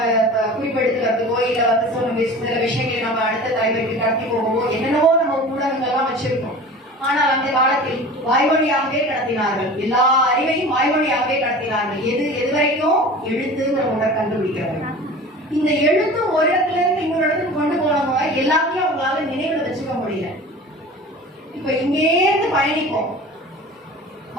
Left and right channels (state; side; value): normal; both; correlation 0.38